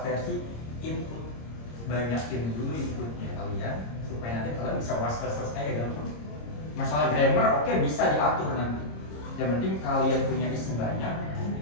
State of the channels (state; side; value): late; right; 26 ms